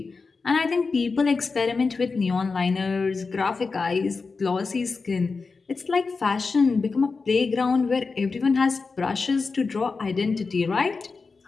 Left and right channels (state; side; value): quieter; right; 4.4 dB